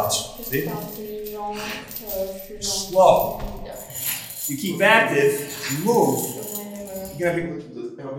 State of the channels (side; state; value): both; identical; correlation 1.00